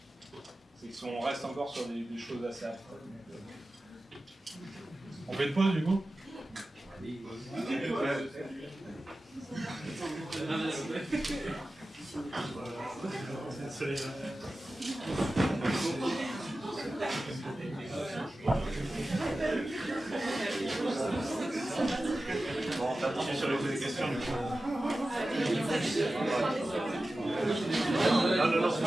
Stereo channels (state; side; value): normal; both; correlation 0.95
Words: c'est qu'on reste encore sur des choses assez abstraites. On fait une pause du coup? Bon, on va continuer sur les questions du coup. Non, c'est